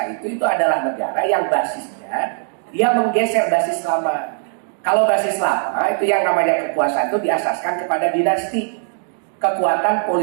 itu adalah negara yang basisnya dia menggeser basis lama. Kalau basis lama itu yang namanya kekuasaan itu diasaskan kepada dinasti, kekuatan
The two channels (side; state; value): left; silent; 66 dB below the other